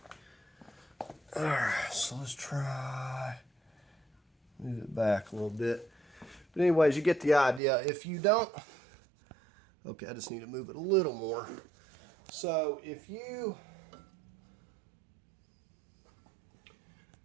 Alright, so let's try move it back a little bit. But anyways, you get the idea. If you don't, okay, I just need to move it a little more. So if you,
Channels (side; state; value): left; drops out; at 7.6 s